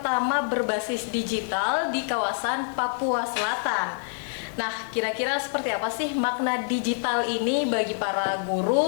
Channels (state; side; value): silent; right; digital silence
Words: berbasis digital di kawasan Papua Selatan. Nah, kira-kira seperti apa sih makna digital ini bagi para